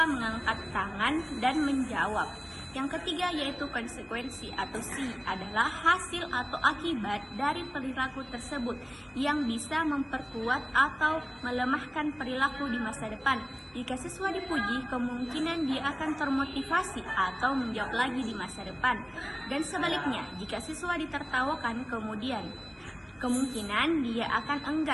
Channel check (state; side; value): identical; both; correlation 1.00